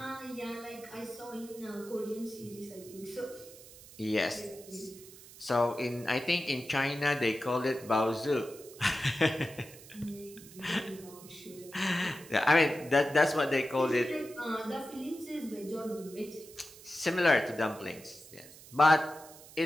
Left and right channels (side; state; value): right; noise; hiss, 19 dB below the sound